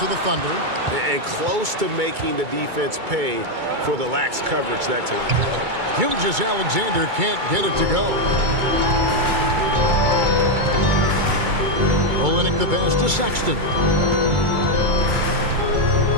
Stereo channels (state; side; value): late; left; 2.3 ms